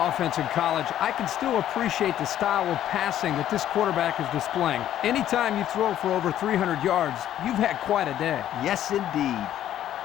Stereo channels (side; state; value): right; quieter; 11.6 dB